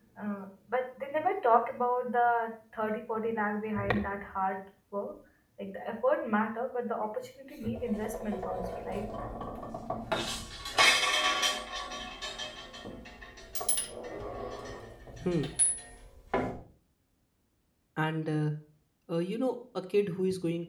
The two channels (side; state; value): both; identical; correlation 1.00